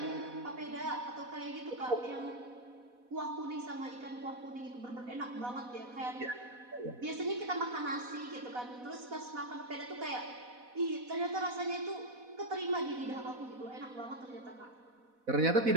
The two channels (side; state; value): left; late; 4.1 ms